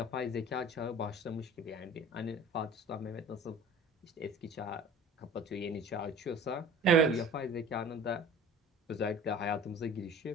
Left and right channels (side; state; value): both; normal; correlation 0.42